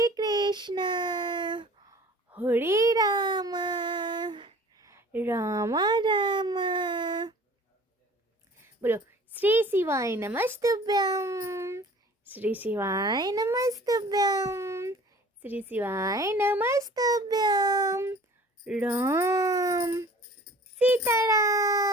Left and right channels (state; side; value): normal; both; correlation 0.47